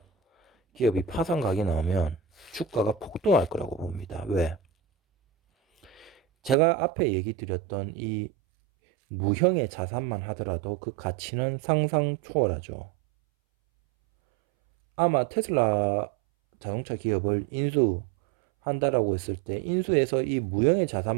기업이 파산각이 나오면 주가가 폭등할 거라고 봅니다. 왜? 제가 앞에 얘기 드렸던 이 무형의 자산만 하더라도 그 가치는 상상 초월하죠. 아마 테슬라 자동차 기업을 인수한다라고 했을 때 인수해서 이 무형의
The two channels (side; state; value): left; drops out; at 6.6 s